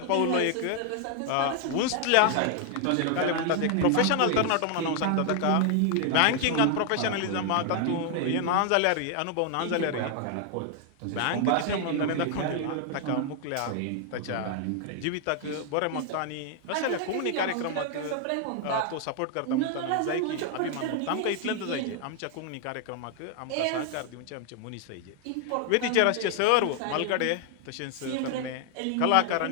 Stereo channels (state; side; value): different; both; correlation 0.00